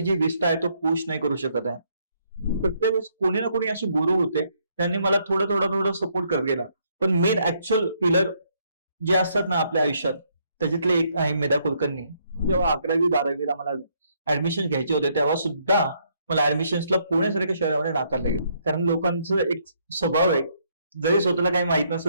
जी विष्ठा आहे तो पुश नाही करू शकत आहे. प्रत्येक वेळेस कोणी ना कोणी असे गुरु होते, त्यांनी मला थोडं सपोर्ट करत गेला. पण मेन ऍक्च्युअल पिलर जे असतात ना आपल्या आयुष्यात, त्याच्यातले एक आहे मेधा कुलकर्णी. जेव्हा 11वी-12वीला मला ऍडमिशन घ्यायचे होते तेव्हा सुद्धा मला ऍडमिशन्सला पुण्यासारख्या शहरामध्ये नाकारले गेले. कारण लोकांचं एक स्वभाव आहे, जरी स्वतःला काही माहित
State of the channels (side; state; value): both; inverted; correlation -0.71